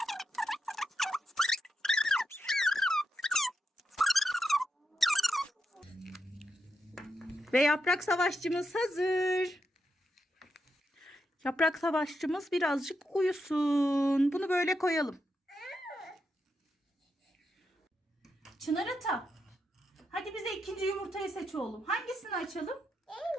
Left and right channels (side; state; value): both; normal; correlation 0.85